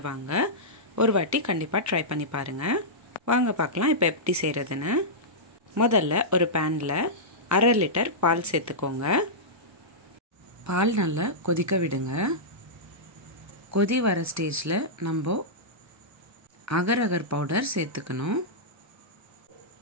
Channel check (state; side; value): normal; both; correlation -0.12